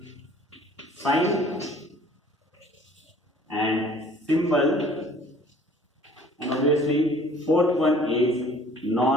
sign and symbol, and obviously fourth one is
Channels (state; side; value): normal; both; correlation 0.52